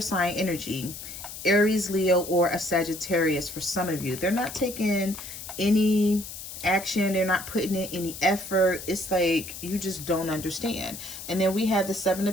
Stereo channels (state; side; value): noise; left; hiss, 11 dB below the sound